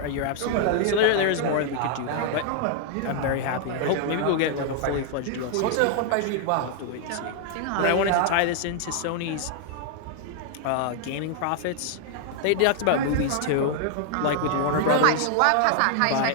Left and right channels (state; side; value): different; both; correlation 0.00